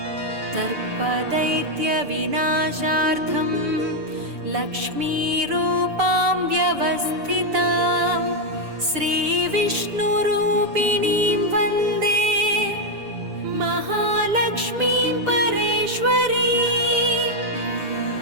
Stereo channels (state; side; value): late; left; 6.8 ms